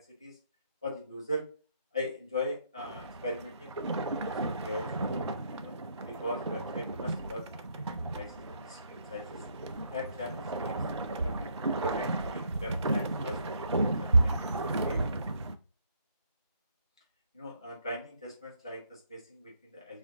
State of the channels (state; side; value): inverted; both; correlation -0.70